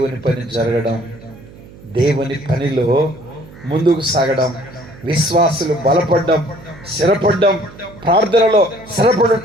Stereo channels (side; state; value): right; noise; hum, 20 dB below the sound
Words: పని జరగడం, దేవుని పనిలో ముందుకు సాగడం, విశ్వాసులు బలపడడం, స్థిరపడడం, ప్రార్థనలో